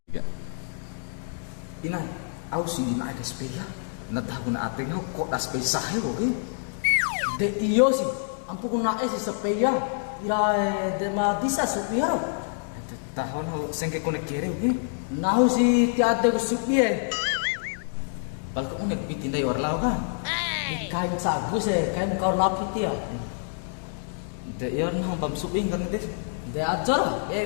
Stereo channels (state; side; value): silent; right; digital silence